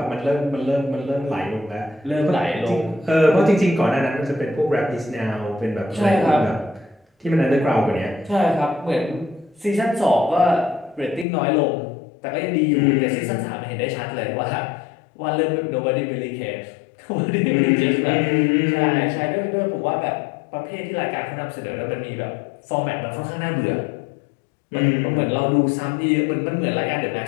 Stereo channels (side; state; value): right; drops out; at 11.2 s